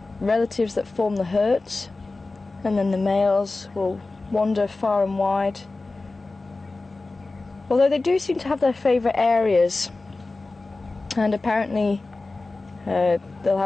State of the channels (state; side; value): quieter; right; 3.3 dB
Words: relatives that form the herds, and then the males will wander far and wide. Although they do seem to have their favourite areas, and apparently they'll